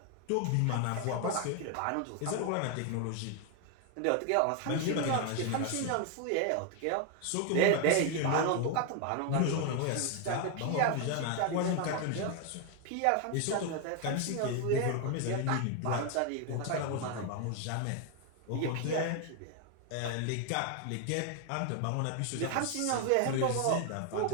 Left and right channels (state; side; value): different; both; correlation 0.01